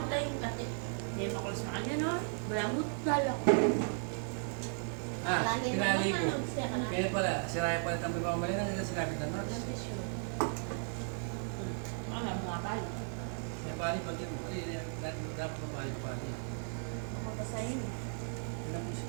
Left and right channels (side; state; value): left; silent; 54 dB below the other